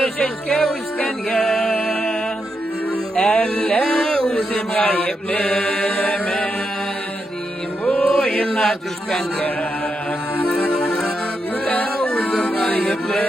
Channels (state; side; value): normal; both; correlation 0.84